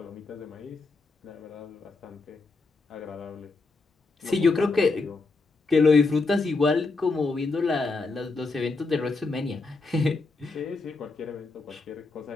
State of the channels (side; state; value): right; quieter; 3.8 dB